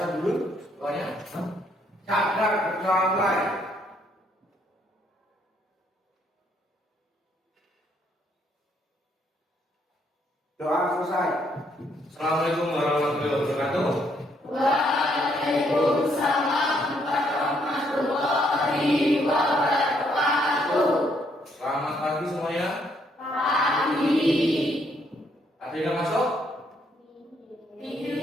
dulu? Doanya? Cadar berjalan. Doa selesai. Assalamualaikum warahmatullahi wabarakatuh. Waalaikumsalam warahmatullahi wabarakatuh. Selamat pagi semuanya. Pagi. Ada yang masuk? Iya,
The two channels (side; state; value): both; normal; correlation 0.71